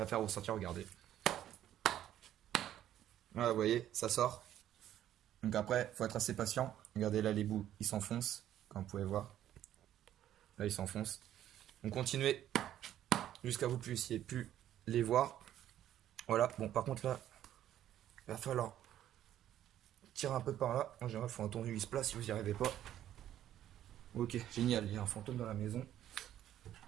faire ressortir, regardez. Voilà, vous voyez, ça sort. Donc après, faut être assez patient. Regardez là, les bouts, ils s'enfoncent, comme vous pouvez voir. Là, ils s'enfoncent. Donc continuez jusqu'à vous puissiez plus les voir. Voilà, bon, par contre là, il va falloir tirer un peu par là. En général, il faut un tournevis plat si vous n'y arrivez pas. Ok, génial, il y a un fantôme dans la maison.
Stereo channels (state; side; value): quieter; left; 11.7 dB